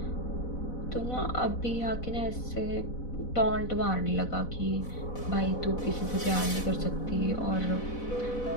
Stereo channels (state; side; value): late; right; 4.1 ms